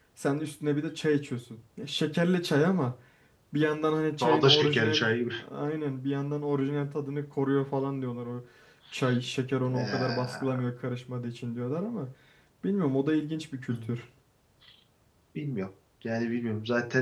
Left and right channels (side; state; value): both; identical; correlation 1.00